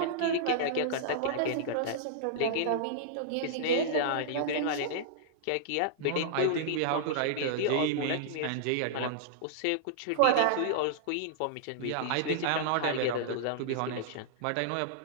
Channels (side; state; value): both; different; correlation -0.02